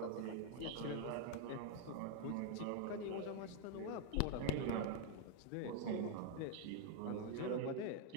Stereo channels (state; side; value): different; both; correlation 0.00